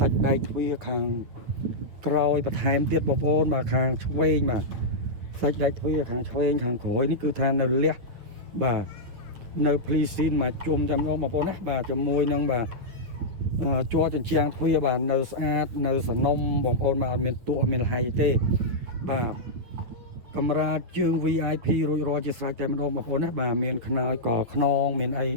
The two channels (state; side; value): late; left; 9.0 ms